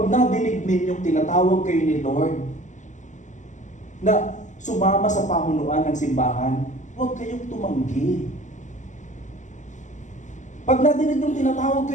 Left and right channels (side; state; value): right; late; 0.35 ms